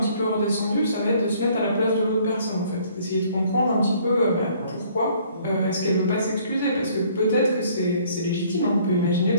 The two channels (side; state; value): both; inverted; correlation -0.60